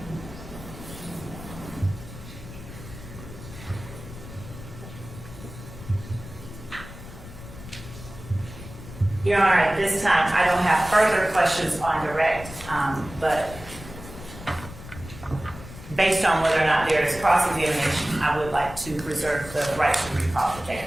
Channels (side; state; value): left; noise; rumble, 14 dB below the sound